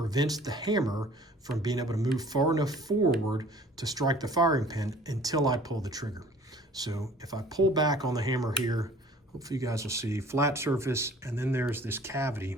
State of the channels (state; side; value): normal; both; correlation 0.50